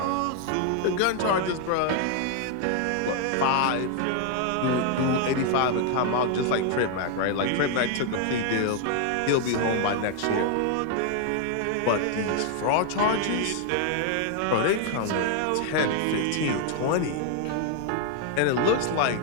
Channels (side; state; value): both; different; correlation 0.00